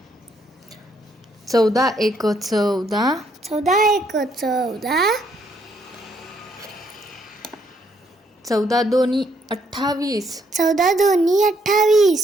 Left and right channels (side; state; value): both; normal; correlation 0.72